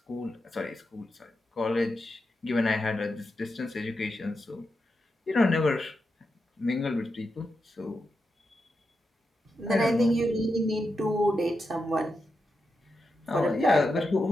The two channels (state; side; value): normal; both; correlation 0.87